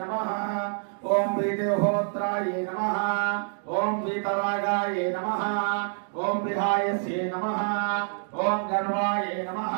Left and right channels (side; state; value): left; silent; digital silence